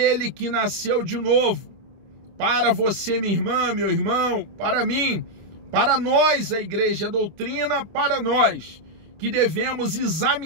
que nasceu de novo, para você, minha irmã, meu irmão, para mim, para nós, a igreja, a doutrina, para nós, que devemos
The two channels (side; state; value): left; late; 25 ms